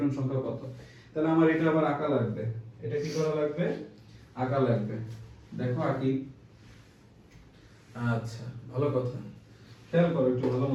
সংখ্যা কত? তাহলে আমার এটা আবার আঁকা লাগবে। এটা কি করা লাগবে? আঁকা লাগবে। দেখো আঁকি। আচ্ছা ভালো কথা, খেয়াল করো একটু ভালো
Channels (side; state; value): both; identical; correlation 1.00